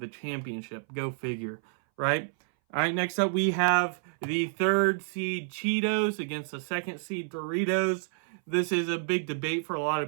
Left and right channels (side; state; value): left; silent; 58 dB below the other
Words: championship. Go figure, right? All right, next up we have the 3rd seed Cheetos against the 2nd seed Doritos. this is a big debate for a lot